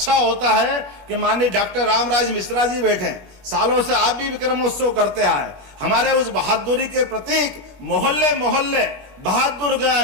होता है कि माननीय डॉक्टर रामराज मिश्रा जी बैठे, सालों से आप भी विक्रमोत्सव करते आए। हमारे उस बहादुरी के प्रतीक मोहल्ले मोहल्ले,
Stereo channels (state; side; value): late; left; 16 ms